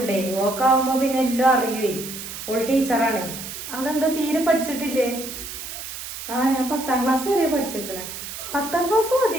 ഓക്കാവുമ്പോ പിന്നെ എല്ലാം അറിയുവേ. ഓൾ ടീച്ചറാണ്. അതെന്താ തീരെ പഠിച്ചിട്ടില്ലേ? ഞാൻ 10ാം ക്ലാസ് വരെ പഠിച്ചിരിക്കണേ. 10ാം ക്ലാസ്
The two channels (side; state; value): right; noise; hiss, 9 dB below the sound